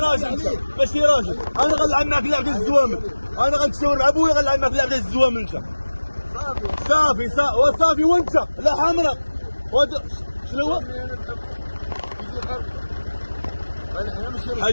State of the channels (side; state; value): both; inverted; correlation -1.00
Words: انت ماشي راجل انا غنلعب معاك اللعب ديال الزوامل انا غنتشاور مع ابويا غنلعب معاك اللعب ديال الزوامل انت صافي وانت لا حمراء شنو هو؟